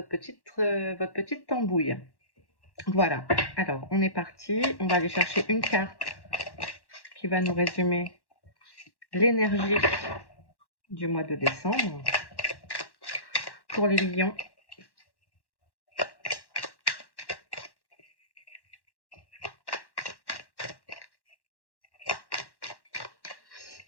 petite tambouille. Voilà, alors on est parti, on va aller chercher une carte qui va nous résumer l'énergie du mois de décembre pour les lions.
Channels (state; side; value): late; right; 1.1 ms